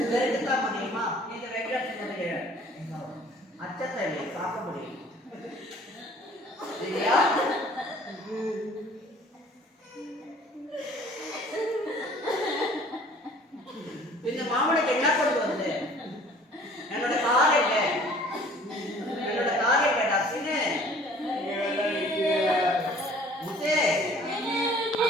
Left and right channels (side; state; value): both; normal; correlation 0.52